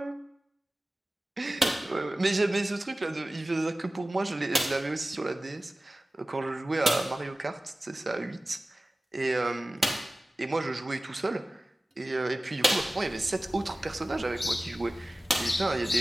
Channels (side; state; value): both; normal; correlation 0.97